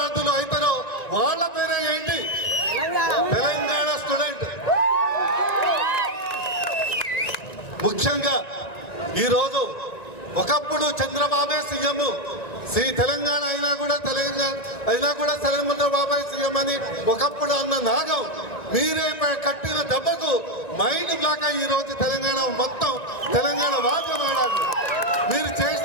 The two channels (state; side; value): late; right; 1.9 ms